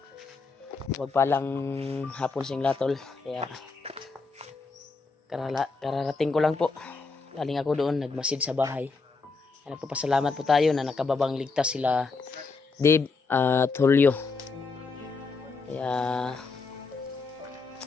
Huwag palang hapon singla tol. Kaya kararating ko lang po. Galing ako doon, nagmasid sa bahay. Kaya nagpapasalamat po tayo na nakababang ligtas sila Dave at Julio. Kaya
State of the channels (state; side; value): quieter; right; 4.3 dB